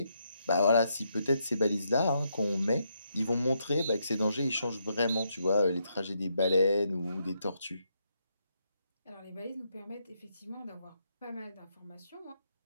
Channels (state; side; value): inverted; both; correlation -0.79